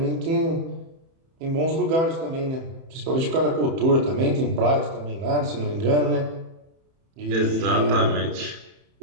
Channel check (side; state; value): left; late; 30 ms